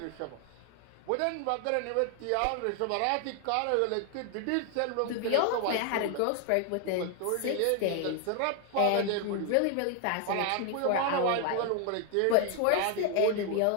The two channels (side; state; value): both; different; correlation 0.00